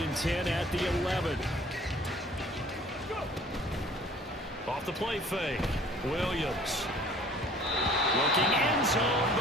and 10 at the 11. Off the play fake. Williams. Looking end zone,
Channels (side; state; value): both; normal; correlation 0.52